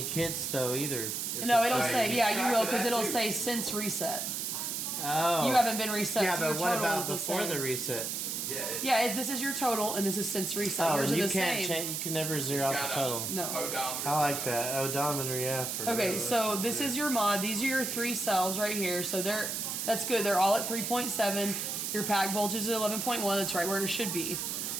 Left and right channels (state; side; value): noise; right; hiss, 2 dB below the sound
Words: hits though either. No, it'll say you will because it'll say since reset. Oh. You haven't been reset. Yeah, so your but what total is about the before same. the reset? Yeah, this is your total, and this is since reset. Oh, Yours and are you the can't same. change. You can never zero out the total. No. I like that odometer. Yeah. For Okay, so this is your mod. These are your 3 cells right here. So that's good. They're all at 3.7. Your pack voltage is 11.1. That's right where it should be.